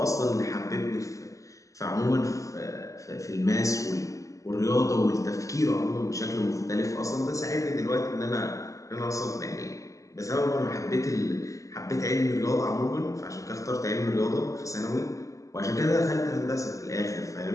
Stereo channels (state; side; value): late; right; 0.16 ms